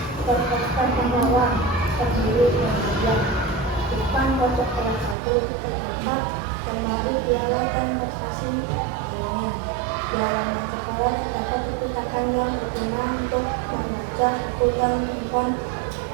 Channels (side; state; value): left; drops out; at 5.2 s